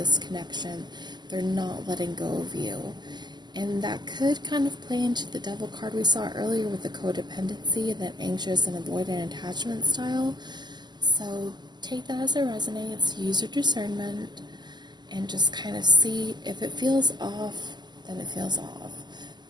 connection. They're not letting go of you. And that could kind of play into the Devil card we saw earlier with the codependency and that anxious and avoidant attachment style. So take that as it resonates, use your discernment, and just kind of see if it feels off, then it feels off.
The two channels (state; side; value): late; left; 0.21 ms